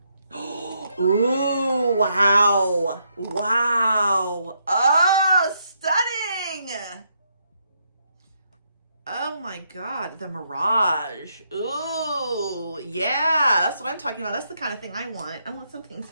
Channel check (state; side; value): inverted; both; correlation -0.77